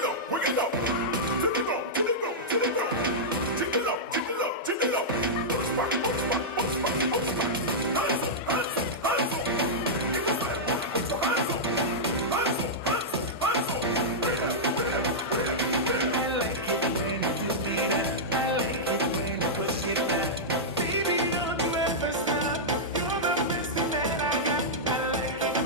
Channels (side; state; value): both; normal; correlation -0.10